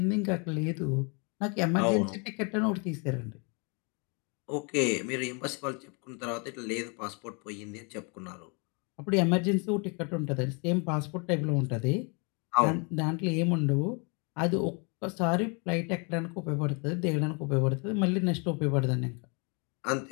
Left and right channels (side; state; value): right; quieter; 34.0 dB